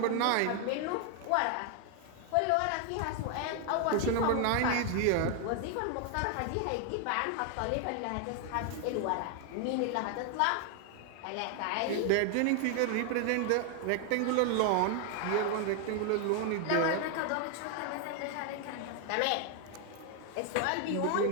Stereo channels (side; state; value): both; different; correlation 0.00